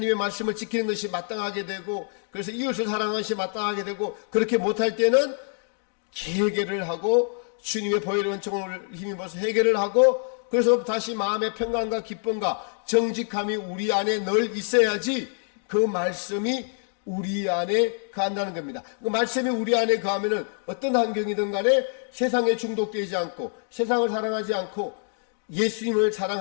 말씀을 지키는 것이 마땅하게 되고, 그래서 이웃을 사랑하는 것이 마땅하게 되고, 그렇게 못할 때는 해결을 하고 주님의 보혈의 은총을 힘입어서 해결을 하고, 그래서 다시 마음의 평강과 기쁨과 정직함이 우리 안에 늘 있어야지 그 말씀이 우리 안에 거한다는 겁니다. 그 말씀이 우리 안에 거하면은 어떤 환경이든 간에 세상에 중독되지 않고 세상을 사랑하지 않고 예수님을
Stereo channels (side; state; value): right; silent; 58 dB below the other